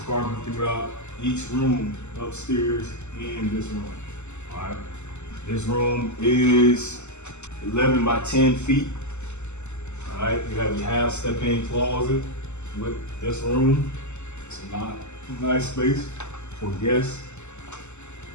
throughout each room, upstairs and this room. All right, this room is 11 by 10 feet. All right, you have your half step-in closet with this room. It's a nice space for guests.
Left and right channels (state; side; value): late; right; 0.83 ms